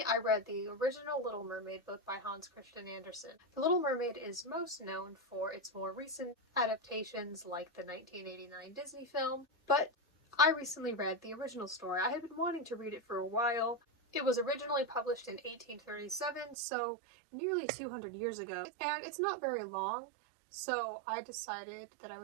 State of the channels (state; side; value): drops out; left; at 16.6 s